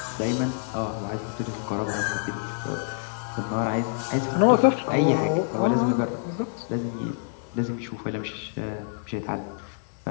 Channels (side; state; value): right; silent; digital silence